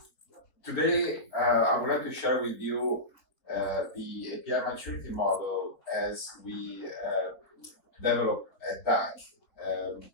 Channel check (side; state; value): right; late; 4.1 ms